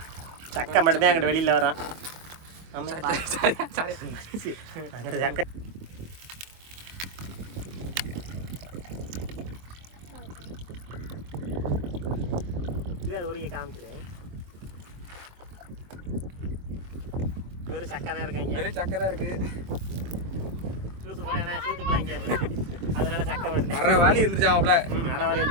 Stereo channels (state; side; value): late; left; 23 ms